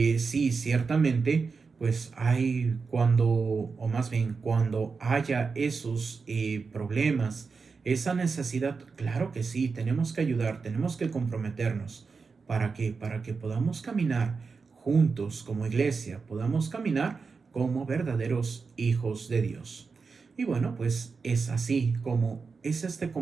ciertamente, pues hay cuando, o más bien cuando haya esos problemas, esa necesidad, claro que sí, tenemos que ayudar, tenemos que comprometernos. ¿Para qué? Para que podamos caminar juntos como iglesia, podamos caminar como verdaderos hijos de Dios. Y bueno, pues es así como es este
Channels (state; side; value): quieter; left; 4.9 dB